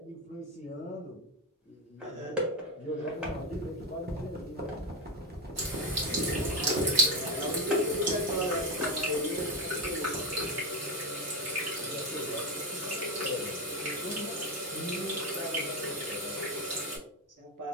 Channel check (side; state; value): both; normal; correlation 0.12